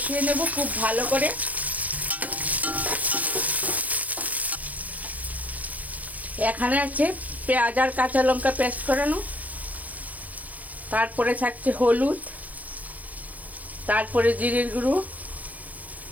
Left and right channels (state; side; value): late; left; 0.077 ms